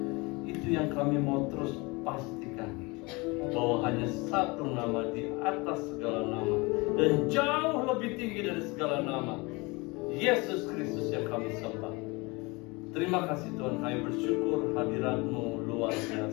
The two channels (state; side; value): quieter; right; 25.9 dB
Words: Itu yang kami mau terus pastikan, bahwa hanya satu nama di atas segala nama dan jauh lebih tinggi dari segala nama, Yesus Kristus yang kami sembah. Terima kasih Tuhan, kami bersyukur hadirat-Mu luar